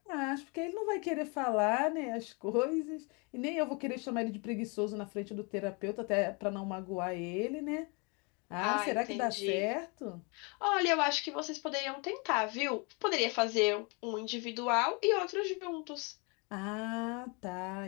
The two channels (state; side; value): quieter; right; 31.8 dB